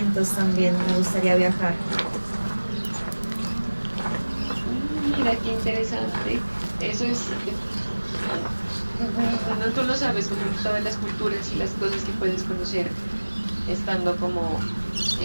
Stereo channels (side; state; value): both; inverted; correlation -1.00